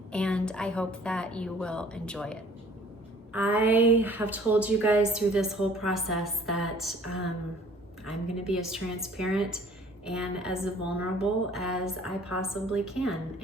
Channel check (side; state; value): both; normal; correlation 0.54